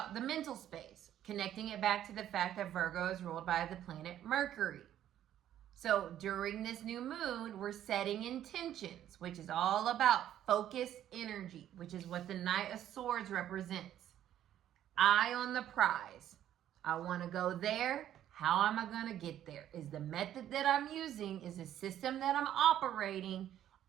the mental space, connecting it back to the fact that Virgo is ruled by the planet Mercury. So during this new moon, we're setting intentions, which is all about focused energy, which is what the Knight of Swords represents. Eye on the prize. I want to go there. How am I going to get there? Is the method that I'm using, is the system that I'm operating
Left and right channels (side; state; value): left; quieter; 11.4 dB